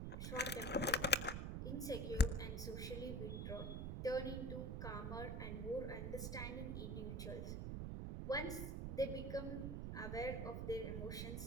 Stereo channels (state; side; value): noise; right; rumble, 2 dB below the sound